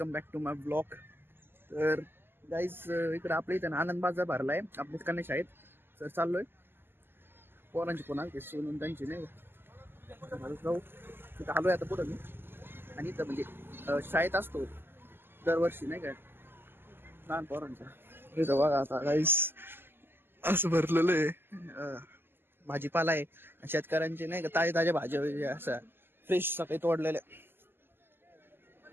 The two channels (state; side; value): late; left; 0.10 ms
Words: back to my blog. तर गाईज इकडे आपल्या इथं आनंद बाजार भरलाय आपल्या कन्या शाळेत. तर चाललोय पोरांची कोणा ते सोनून त्यांची नाही जाऊ तिथं आलोय आता पुढं मी. आणि इथं म्हणजे शाळेत असतो दरवर्षी नाही काय लहान पोरांचा. इथं बघा आता गाईज असं भरलेलं आहे भाजीपाला आहे. शेतकऱ्यांचे नाही का ताजे ताज्या भाज्या असं फ्रेश सकाळी तोडलेल्या